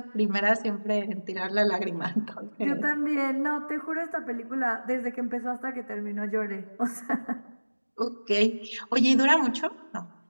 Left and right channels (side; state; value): both; inverted; correlation -1.00